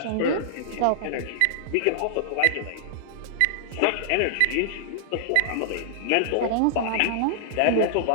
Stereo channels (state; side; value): different; both; correlation -0.01